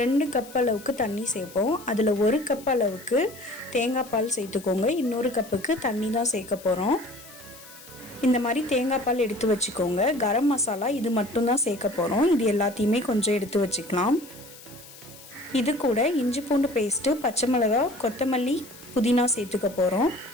கப் அளவுக்கு தண்ணி சேர்ப்போம். அதில் 1 கப் அளவுக்கு தேங்காய் பால் சேர்த்துக்கோங்க. இன்னொரு கப்புக்கு தண்ணி தான் சேர்க்க போகிறோம். இந்த மாதிரி தேங்காய் பால் எடுத்து வச்சுக்கோங்க. கரம் மசாலா இது மட்டும்தான் சேர்க்க போகிறோம். இது எல்லாத்தையுமே கொஞ்சம் எடுத்து வச்சுக்கலாம். இது கூட இஞ்சி பூண்டு பேஸ்ட்டு, பச்சை மிளகாய், கொத்தமல்லி, புதினா சேர்த்துக்க போகிறோம்.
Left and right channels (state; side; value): noise; left; hiss, 19 dB below the sound